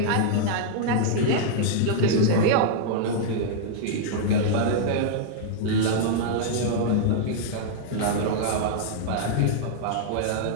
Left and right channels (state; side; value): different; both; correlation -0.01